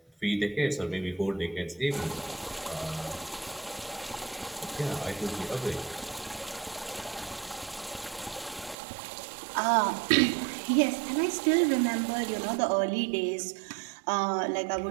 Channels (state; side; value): drops out; left; at 8.8 s